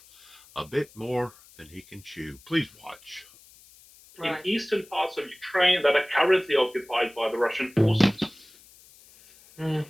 a bit more than he can chew. Please watch. In eastern parts of Ukraine that are currently occupied by the Russian forces.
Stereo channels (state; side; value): noise; left; hiss, 25 dB below the sound